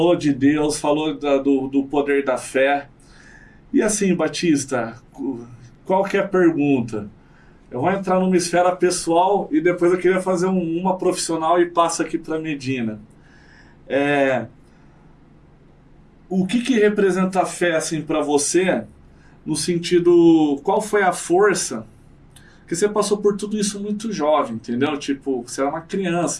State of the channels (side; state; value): both; identical; correlation 1.00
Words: de Deus, falou do poder da fé. E assim, Batista, qualquer pergunta, eu vou entrar numa esfera pessoal e depois eu queria fazer uma profissional e passo aqui para Medina. O que representa a fé assim, para você, no sentido, qual foi a força? Porque você passou por tudo isso muito jovem, entendeu? Tipo, você era uma